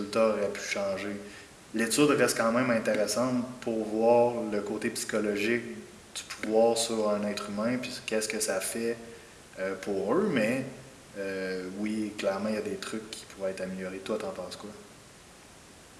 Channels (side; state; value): both; identical; correlation 1.00